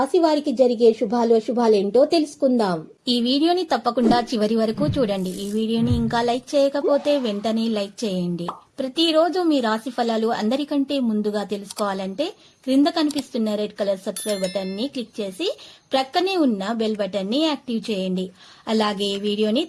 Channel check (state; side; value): identical; both; correlation 1.00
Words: వారికి జరిగే శుభాలేంటో తెలుసుకుందాం. ఈ వీడియోని తప్పకుండా చివరి వరకు చూడండి. ఈ వీడియోని ఇంకా లైక్ చేయకపోతే వెంటనే లైక్ చేయండి. ప్రతిరోజు మీ రాశి ఫలాలు అందరికంటే ముందుగా తెలుసుకోవాలంటే క్రింద కనిపిస్తున్న రెడ్ కలర్ సబ్స్క్రైబ్ బటన్ ని క్లిక్ చేసి ప్రక్కనే ఉన్న బెల్ బటన్ ని యాక్టివ్ చేయండి. అలాగే ఈ వీడియోని